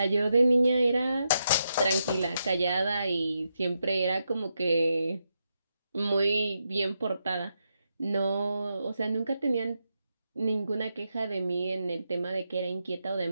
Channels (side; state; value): both; inverted; correlation -0.84